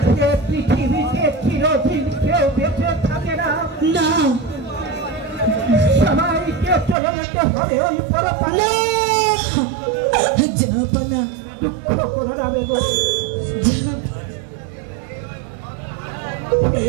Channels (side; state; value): left; drops out; at 7.0 s